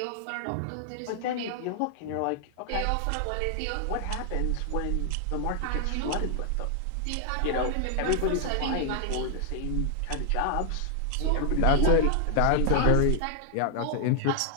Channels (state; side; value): different; both; correlation 0.00